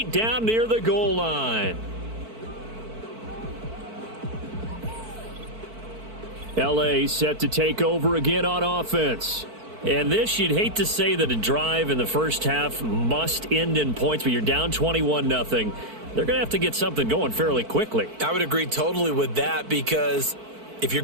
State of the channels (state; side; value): late; left; 4.5 ms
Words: down near the goal line. L.A. set to take over again on offense. And this, you'd hate to say that a drive in the first half must end in points, but you're down 21-0. They're going to have to get something going fairly quickly. I would agree totally with that, because if